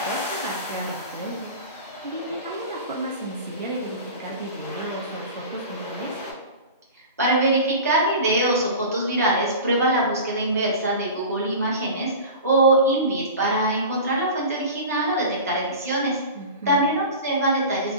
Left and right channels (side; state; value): both; inverted; correlation -0.34